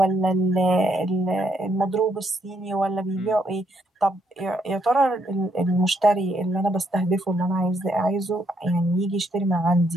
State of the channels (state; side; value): normal; both; correlation 0.73